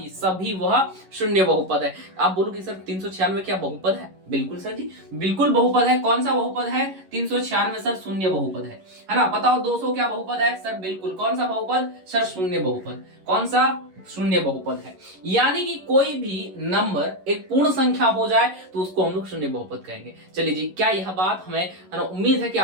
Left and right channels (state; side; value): late; left; 11 ms